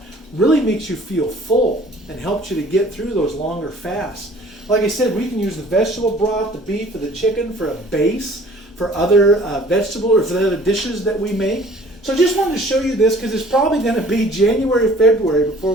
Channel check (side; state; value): both; normal; correlation 0.52